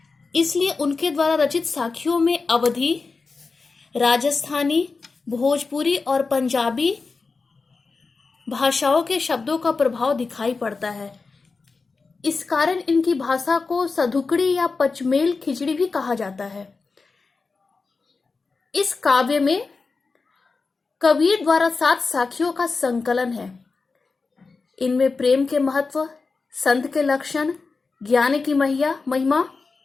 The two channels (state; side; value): quieter; right; 4.3 dB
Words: इसलिए उनके द्वारा रचित साखियों में अवधी, राजस्थानी, भोजपुरी और पंजाबी भाषाओं के शब्दों का प्रभाव दिखाई पड़ता है। इस कारण इनकी भाषा को सधुकड़ी या पचमेल खिचड़ी भी कहा जाता है। इस काव्य में कबीर द्वारा 7 साखियों का संकलन है। इनमें प्रेम के महत्व, संत के लक्षण, ज्ञान की महिमा,